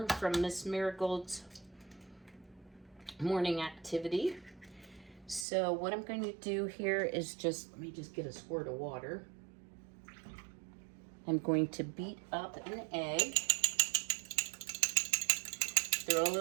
from Miss Marigold's morning activity. So what I'm going to do here is let me just get a squirt of water. I'm going to beat up an egg. Throw a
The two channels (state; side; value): drops out; left; at 5.5 s